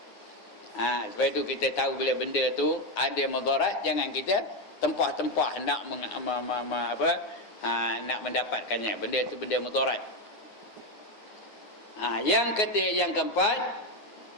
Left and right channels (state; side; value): late; right; 9.5 ms